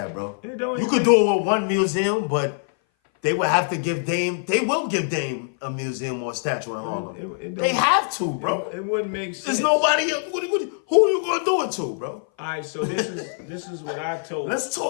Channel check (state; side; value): silent; right; 58 dB below the other